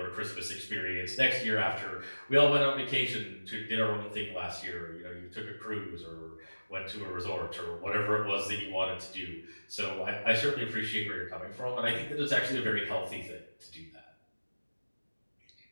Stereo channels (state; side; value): inverted; both; correlation -1.00